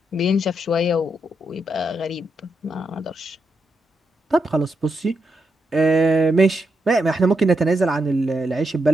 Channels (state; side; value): normal; both; correlation 0.83